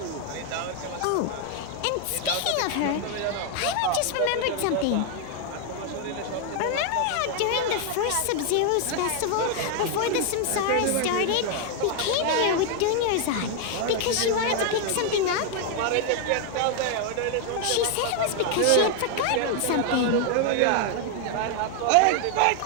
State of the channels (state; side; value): different; both; correlation 0.00